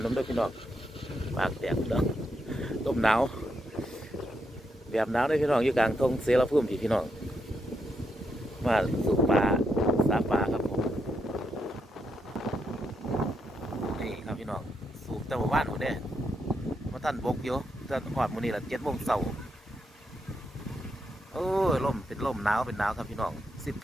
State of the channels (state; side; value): normal; both; correlation 0.81